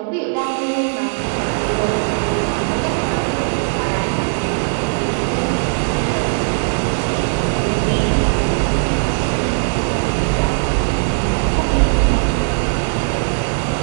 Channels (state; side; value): silent; left; digital silence